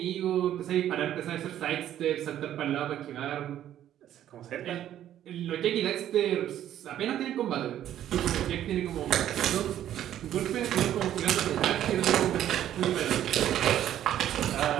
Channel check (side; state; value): left; quieter; 11.5 dB